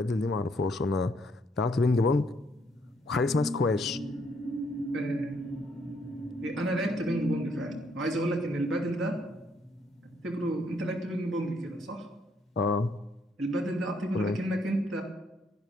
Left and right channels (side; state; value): both; normal; correlation 0.70